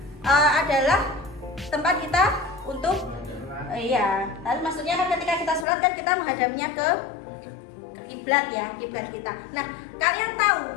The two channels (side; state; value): right; drops out; at 5.7 s